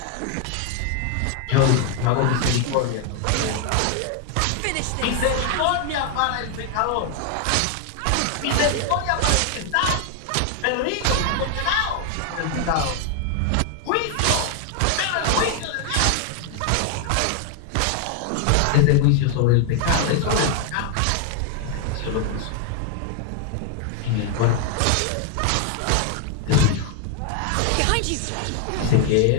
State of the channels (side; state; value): both; different; correlation 0.00